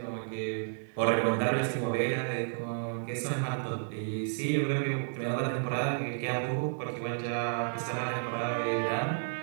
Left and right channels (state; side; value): silent; left; 57 dB below the other